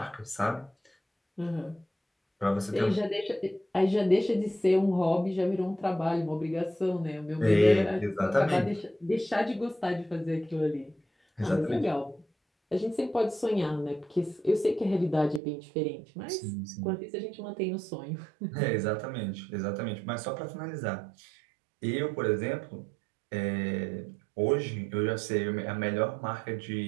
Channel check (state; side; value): drops out; left; at 15.4 s